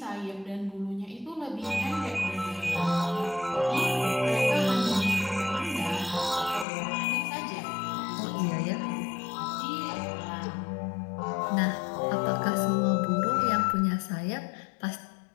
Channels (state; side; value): drops out; right; at 6.7 s